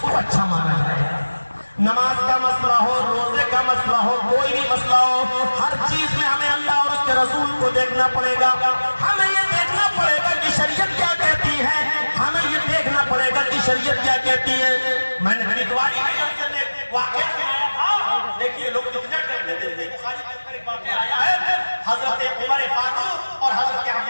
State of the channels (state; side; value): inverted; both; correlation -1.00